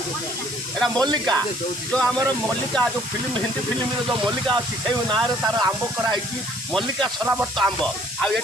मल्लिका जो आम मल्लिका जो फिल्म हिंदी फिल्म जो मल्लिका अच्छी से ना तार आंब कराई मल्लिका सरावर्त आंब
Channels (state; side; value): noise; right; hiss, 12 dB below the sound